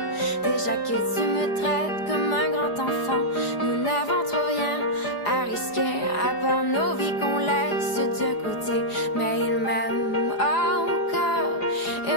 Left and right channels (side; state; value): right; late; 4.9 ms